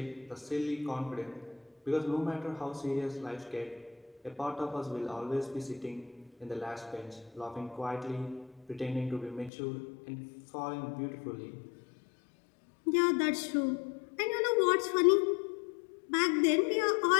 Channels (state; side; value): drops out; right; at 9.5 s